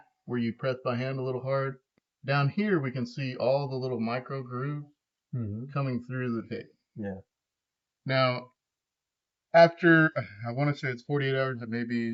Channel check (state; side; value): identical; both; correlation 1.00